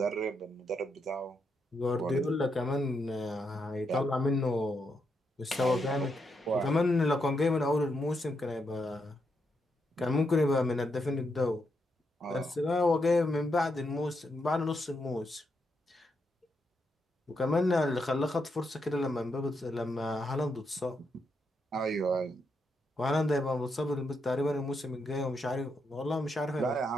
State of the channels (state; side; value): normal; both; correlation 0.81